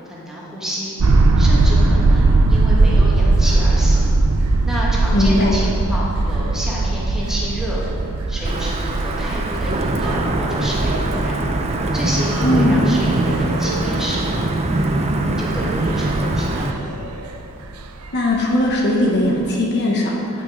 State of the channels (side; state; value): both; normal; correlation 0.78